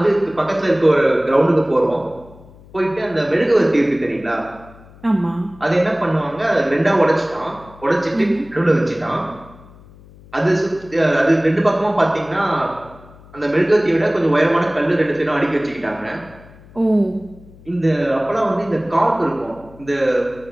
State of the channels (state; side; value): noise; left; hum, 23 dB below the sound